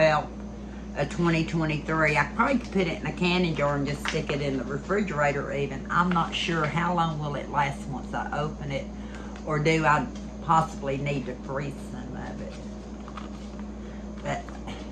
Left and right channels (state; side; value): identical; both; correlation 1.00